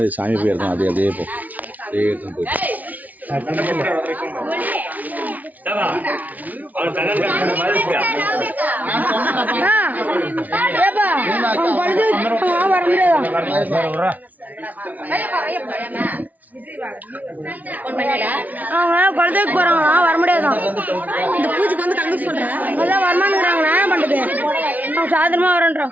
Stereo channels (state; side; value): late; left; 0.076 ms